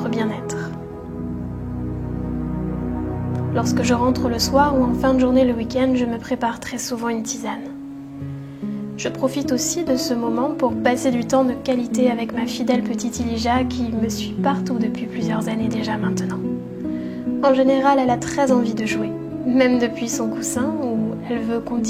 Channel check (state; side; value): identical; both; correlation 1.00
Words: bien-être. Lorsque je rentre le soir ou en fin de journée le week-end, je me prépare très souvent une tisane. Je profite aussi de ce moment pour passer du temps de qualité avec ma fidèle petite Elijah qui me suit partout depuis plusieurs années déjà maintenant. En général, elle a très envie de jouer, même depuis son coussin où elle veut